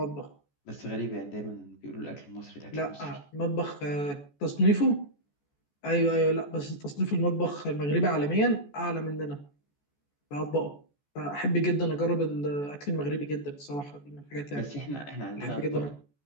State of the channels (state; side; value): late; right; 14 ms